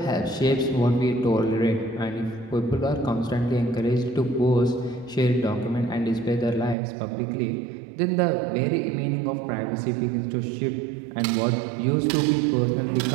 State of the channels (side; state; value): left; drops out; at 6.8 s